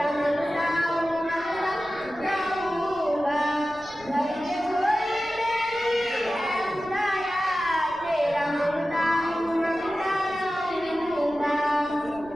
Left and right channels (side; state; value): left; noise; rumble, 22 dB below the sound